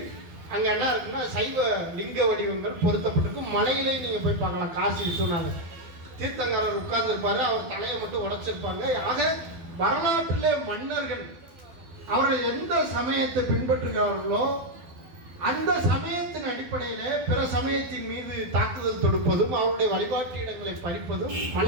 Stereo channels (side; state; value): left; late; 12 ms